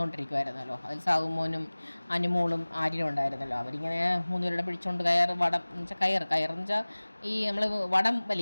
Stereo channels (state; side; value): inverted; both; correlation -1.00